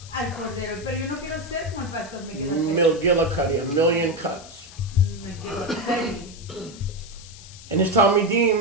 al cordero. Pero yo no quiero ser como el pastor McGillicuddy. McGillicuddy, a million cuts. McGillicuddy. And his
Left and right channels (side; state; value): left; noise; hiss, 18 dB below the sound